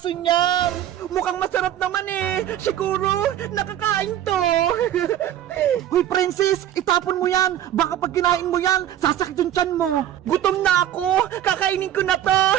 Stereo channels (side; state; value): left; quieter; 11.5 dB